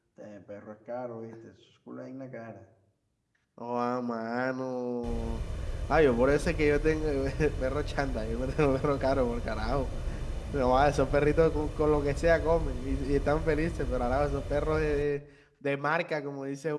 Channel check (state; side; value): identical; both; correlation 1.00